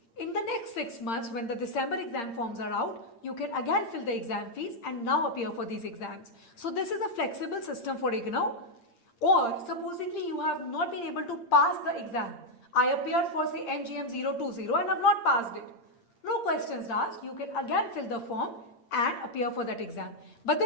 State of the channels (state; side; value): late; right; 8.7 ms